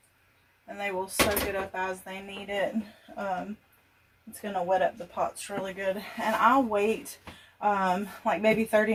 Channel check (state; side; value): identical; both; correlation 1.00